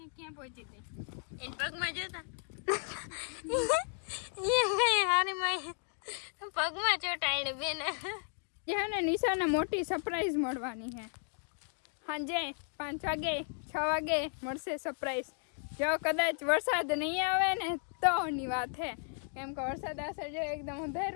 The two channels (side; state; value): right; silent; 55 dB below the other